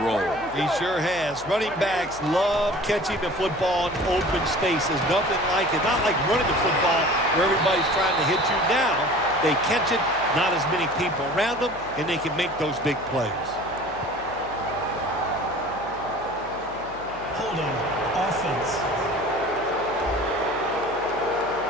role. He sure has. Running backs love catching the football in open space. There's nothing like it. Not like running the football where everybody's trying to hit you. Now they catch it, not as many people around them, and they can make those big plays. Holding. Offense.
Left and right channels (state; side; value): noise; left; hum, 20 dB below the sound